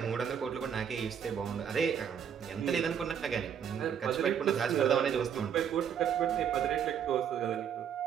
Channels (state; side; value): quieter; left; 8.2 dB